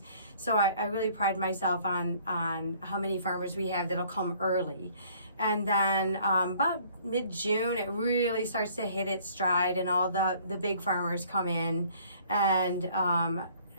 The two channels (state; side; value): inverted; both; correlation -0.57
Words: So I really pride myself on how many farmers we have that'll come early. And then about mid-June, it really starts to hit its stride, and all the big farmers come in, and